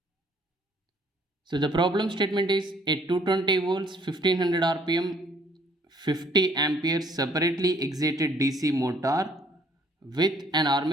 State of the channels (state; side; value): normal; both; correlation 0.62